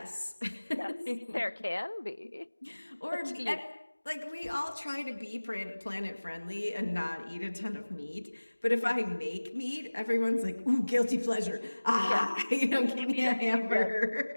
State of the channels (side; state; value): both; inverted; correlation -1.00